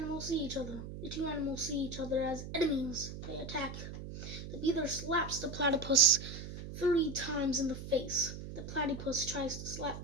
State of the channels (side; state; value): right; noise; hum, 9 dB below the sound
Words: see each other. The two animals see each other as enemies. They attack. The beaver slaps the platypus 3 times in the face. The platypus tries to slap